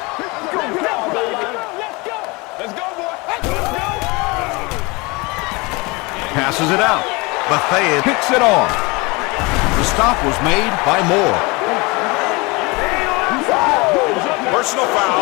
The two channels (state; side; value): quieter; right; 26.0 dB